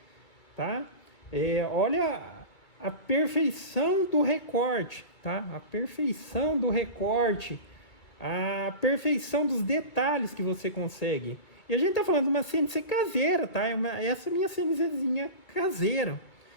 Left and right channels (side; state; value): right; late; 2.3 ms